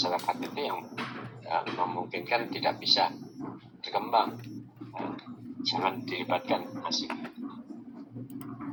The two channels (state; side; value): identical; both; correlation 1.00